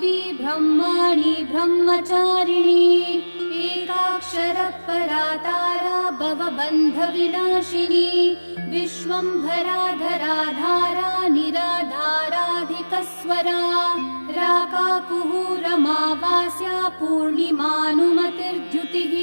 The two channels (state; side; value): inverted; both; correlation -1.00